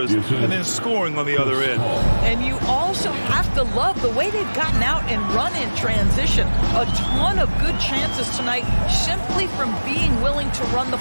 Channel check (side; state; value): both; inverted; correlation -1.00